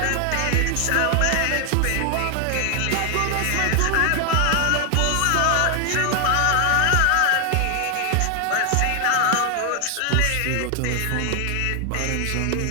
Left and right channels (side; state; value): both; different; correlation 0.00